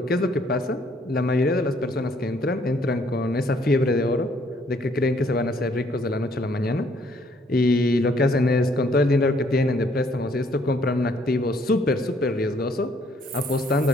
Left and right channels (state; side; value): normal; both; correlation 0.65